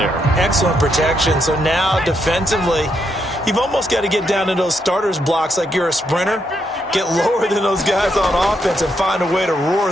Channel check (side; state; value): both; normal; correlation 0.79